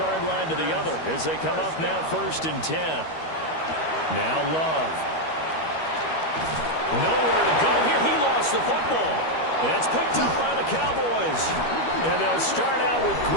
line to the other as they come up now 1st and 10. Now Love. Nowhere to go here. He lost the football. And it's picked up by the Cowboys. And they'll start out with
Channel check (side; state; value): right; late; 13 ms